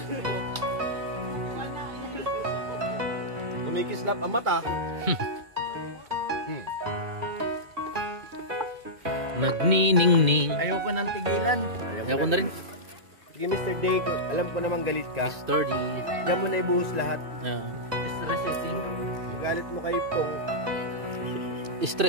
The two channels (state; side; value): late; left; 2.4 ms